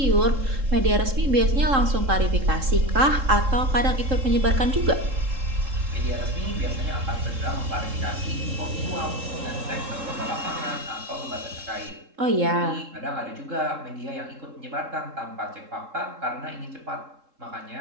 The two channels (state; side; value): late; left; 3.7 ms